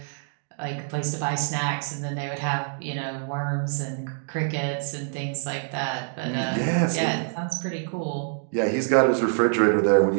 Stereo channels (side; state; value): left; silent; digital silence